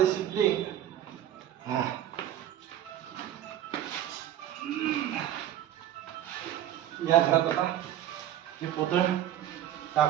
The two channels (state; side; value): quieter; left; 11.8 dB